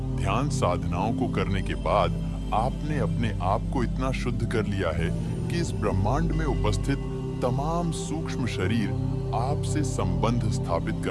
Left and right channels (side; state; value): both; identical; correlation 1.00